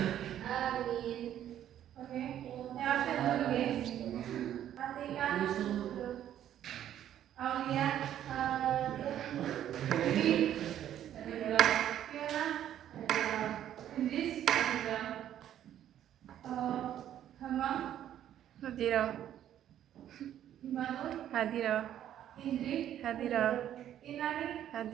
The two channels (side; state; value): left; quieter; 11.1 dB